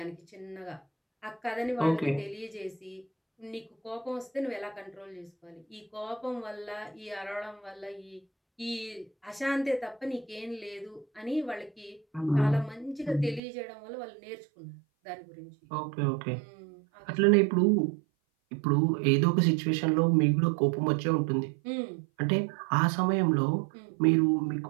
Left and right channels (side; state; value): left; drops out; at 13.4 s